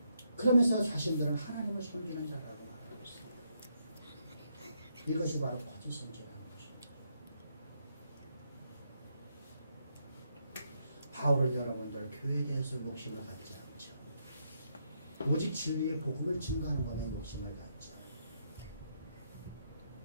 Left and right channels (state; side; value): inverted; both; correlation -0.77